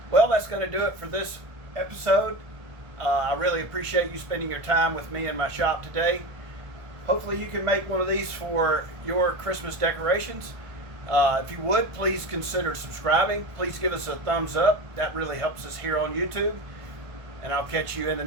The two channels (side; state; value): left; late; 1.5 ms